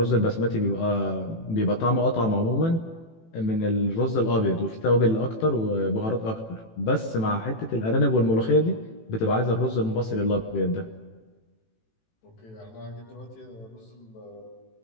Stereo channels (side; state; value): right; late; 18 ms